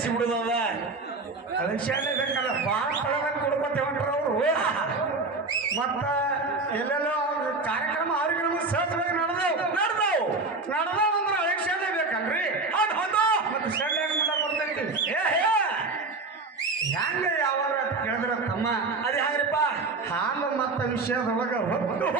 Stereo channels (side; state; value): left; quieter; 3.6 dB